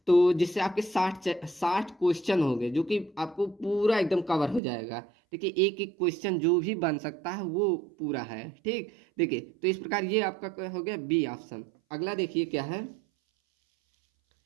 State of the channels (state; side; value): drops out; left; at 4.6 s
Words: तो जिससे आपके 60 क्वेश्चन हो गए जो कि आपको पूरा एकदम कवर हो जाएगा। ठीक है, एक एक क्वेश्चन जो भी बन सकता है वो पूरा है। ठीक, देखिए तो इस प्रकार ये आपका हो गया बी ऑप्शन। अगला देखिए क्या है,